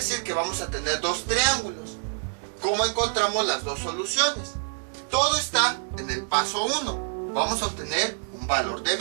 que vamos a tener 2 triángulos. ¿Cómo encontramos las 2 soluciones? Todo está en el paso 1. Vamos a obtener un valor de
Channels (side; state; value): left; silent; 61 dB below the other